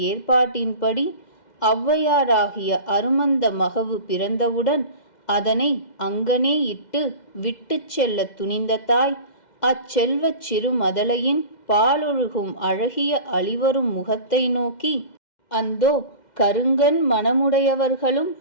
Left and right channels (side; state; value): right; late; 2.1 ms